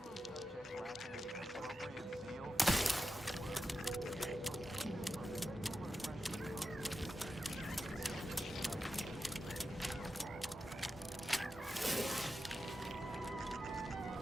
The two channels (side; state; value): both; normal; correlation 0.90